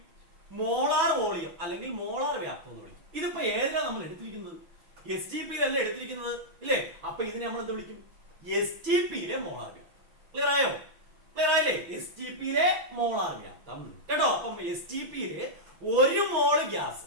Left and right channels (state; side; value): late; left; 6.1 ms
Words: മോളാർ വോളിയം അല്ലെങ്കിൽ മോളാർ വ്യാപ്തം എന്ന് വിളിക്കും. ഇതിപ്പോ ഏതിലാണ് നമ്മൾ എടുത്തിരിക്കുന്നത്? STPയിലല്ല എടുത്തിരിക്കുന്നത് ഇല്ലേ? അപ്പൊ ഇതിനെ നമ്മൾ എന്ത് വിളിക്കും? STPയിലെ മോളാർ വ്യാപ്തം. ക്ലിയർ ആയോ? ക്ലിയർ ആയില്ലേ? STPയിലെ മോളാർ വ്യാപ്തം കേട്ടോ. അപ്പം STPയിലെ ഒരു മോള് ഗ്യാസ്,